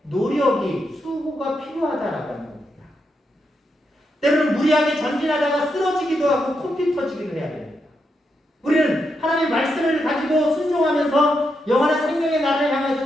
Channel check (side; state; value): both; normal; correlation 0.83